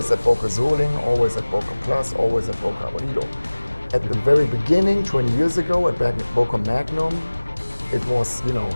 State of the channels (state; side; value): inverted; both; correlation -1.00